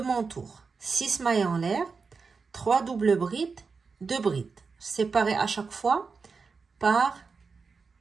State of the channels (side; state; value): left; quieter; 4.8 dB